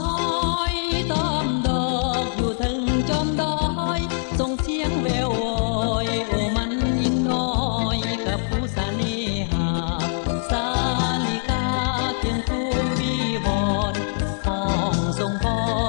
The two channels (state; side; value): silent; right; digital silence